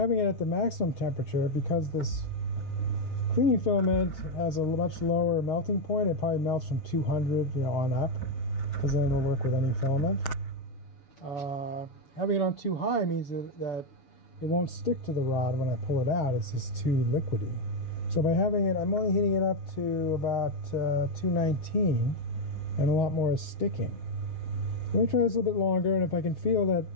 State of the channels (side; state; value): right; late; 6.9 ms